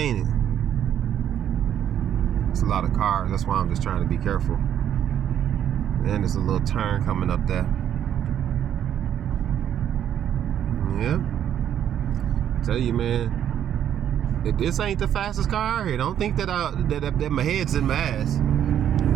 it? It's a lot of cars. That's why I'm just trying to be careful. And there's a little turn coming up there. Yep. Tell you, man, if this ain't the fastest car out here, don't think that that my head's in my ass.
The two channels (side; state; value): left; quieter; 10.0 dB